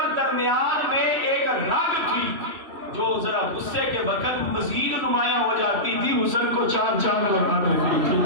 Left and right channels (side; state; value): left; late; 3.1 ms